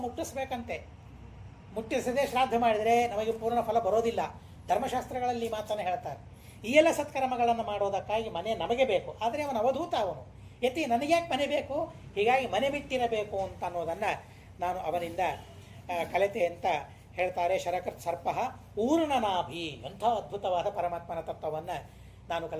ಮುಟ್ಟಿಸ್ಬೇಕಂತೆ. ಮುಟ್ಟಿಸದೆ ಶ್ರಾದ್ದ ಮಾಡಿದರೆ ನಮಗೆ ಪೂರ್ಣ ಫಲ ಬರೋದಿಲ್ಲ. ಧರ್ಮಶಾಸ್ತ್ರಗಳಲ್ಲಿ ಮಾತನ್ನು ಹೇಳ್ತಾರೆ. ಈ ಎಲ್ಲ ಸತ್ಕರ್ಮಗಳನ್ನು ಮಾಡೋದಕ್ಕಾಗಿ ಮನೆ ನಮಗೆ ಬೇಕು, ಆದರೆ ಅವನು ಅವಧೂತ, ಅವನು ಯತಿ, ನನಗ್ಯಾಕೆ ಮನೆ ಬೇಕು, ಹೀಗಾಗಿ ಮನೆ ಬಿಟ್ಟಿರಬೇಕು ಅಂತ ಅನ್ನೋದನ್ನು ನಾನು ಅವನಿಂದ ಕಲಿತೆ ಅಂತ ಹೇಳ್ತಾರೆ. ಶರಕೃತ್ ಸರ್ಪ ಊರ್ಣನಾಭಿ, ಎಂಥ ಅದ್ಭುತವಾದ ಪರಮಾತ್ಮನ ತತ್ವವನ್ನು ನಾನು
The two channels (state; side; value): identical; both; correlation 1.00